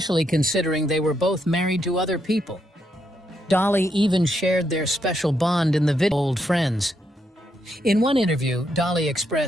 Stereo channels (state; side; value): normal; both; correlation 0.79